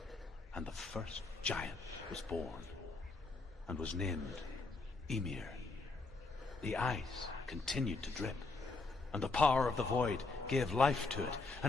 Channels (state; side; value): quieter; right; 3.7 dB